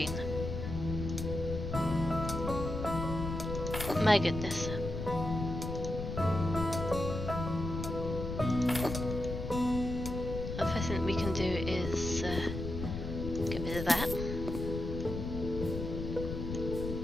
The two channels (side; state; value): left; noise; rumble, 5 dB below the sound